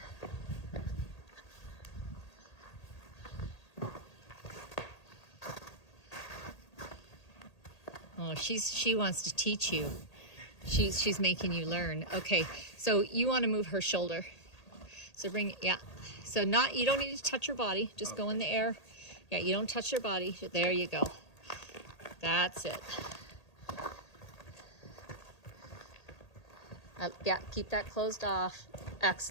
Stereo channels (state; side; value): late; right; 1.8 ms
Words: Oh, she wants to teach you. She's making you learn. Okay, so you want to move her shoulder. So bring, yeah. So you don't need to touch her body. Just go in the air. Yeah, you don't touch her body. There you go. That's it. Yeah, keep that closed off.